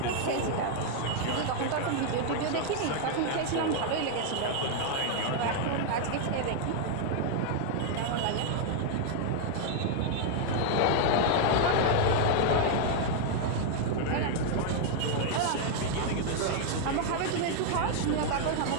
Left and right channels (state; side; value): different; both; correlation 0.00